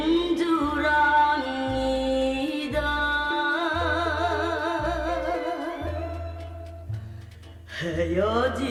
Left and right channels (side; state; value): both; identical; correlation 1.00